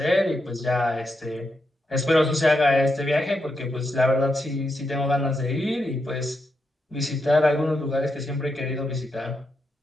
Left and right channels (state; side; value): normal; both; correlation 0.83